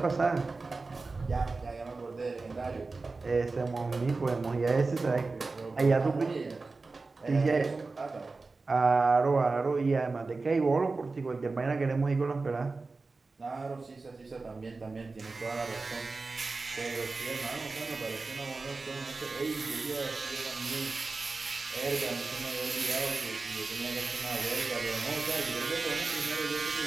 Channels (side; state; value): left; quieter; 3.8 dB